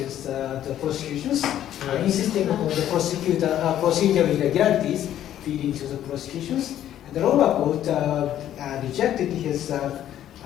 the prosecutions, insisting upon the procedural irregularities leading to the prosecutions. And the lower court rejected his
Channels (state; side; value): quieter; right; 11.5 dB